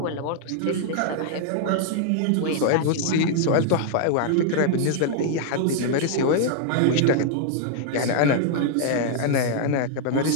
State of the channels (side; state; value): both; different; correlation -0.01